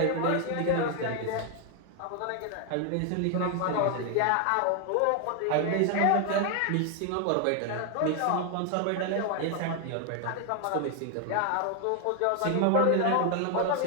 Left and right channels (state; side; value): different; both; correlation 0.01